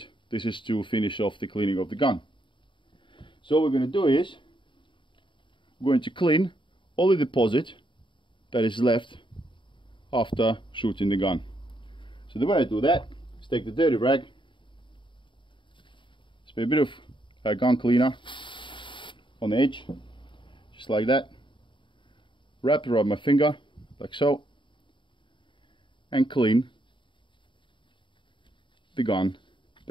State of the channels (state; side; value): late; right; 0.24 ms